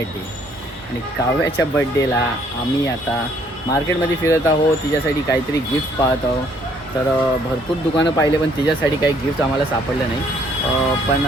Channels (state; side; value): normal; both; correlation 0.64